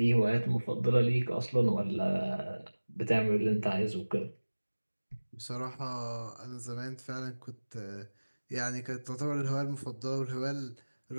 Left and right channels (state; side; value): inverted; both; correlation -1.00